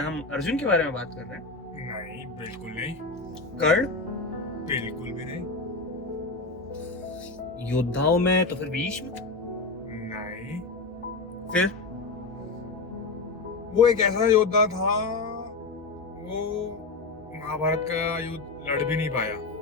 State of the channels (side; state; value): right; quieter; 3.8 dB